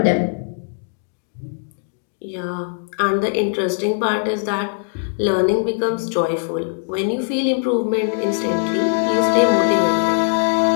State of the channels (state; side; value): silent; right; digital silence